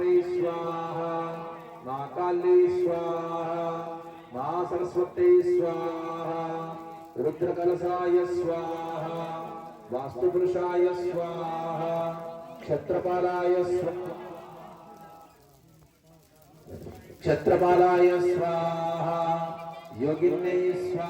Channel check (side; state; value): both; identical; correlation 1.00